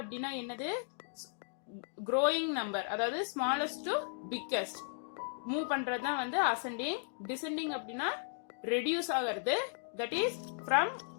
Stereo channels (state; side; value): silent; right; digital silence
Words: அப்படின்னா என்னது? க்ரோயிங் நம்பர், அதாவது ஸ்மாலஸ்ட் டு பிக்கஸ்ட் மூவ் பண்றது தான் வந்து அசெண்டிங். டிசெண்டிங் அப்படின்னா ரெடியூஸ் ஆகிறது, that is from